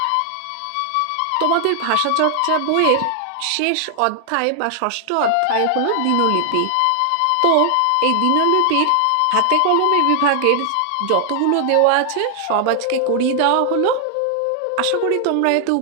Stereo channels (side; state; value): both; different; correlation 0.00